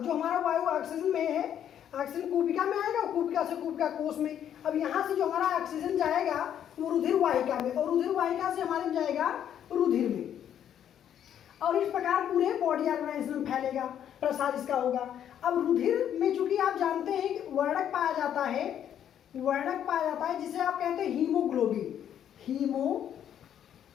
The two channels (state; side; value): quieter; right; 9.8 dB